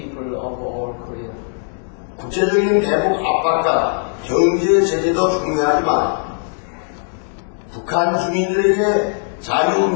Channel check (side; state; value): right; silent; 67 dB below the other